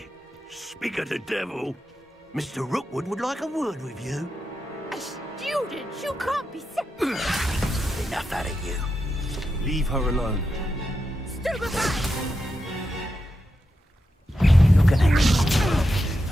Speak of the devil. Mr. Rookwood would like a word with you. A student? You can't be serious. Enough out of you. Leave her alone. Stupefy! Look at her.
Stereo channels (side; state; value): both; normal; correlation 0.88